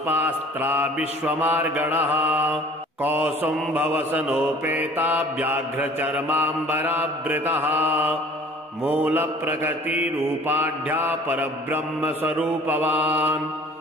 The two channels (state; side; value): normal; both; correlation 0.50